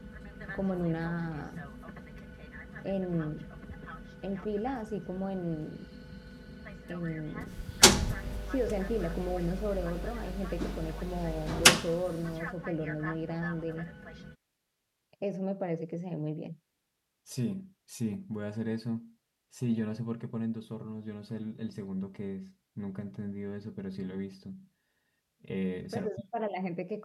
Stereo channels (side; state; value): both; identical; correlation 1.00